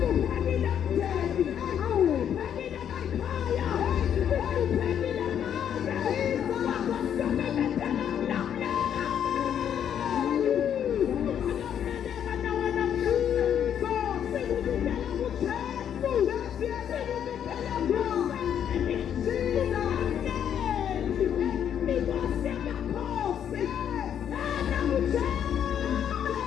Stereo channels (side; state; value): right; quieter; 9.1 dB